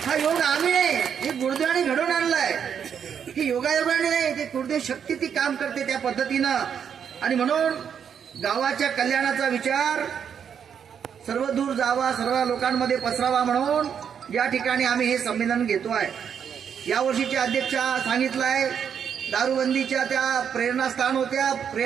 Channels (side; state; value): left; quieter; 7.8 dB